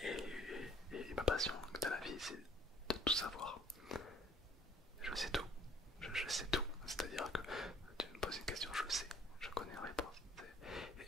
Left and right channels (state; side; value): normal; both; correlation 0.57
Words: Et ma passion dans la vie, c'est de tout savoir. Je sais tout. Je sais tout. C'est-à-dire que tu me poses une question, je sais. Je connais la réponse. Et